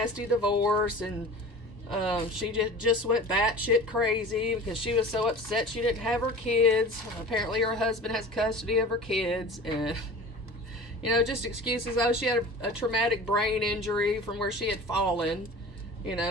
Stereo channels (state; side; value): normal; both; correlation 0.38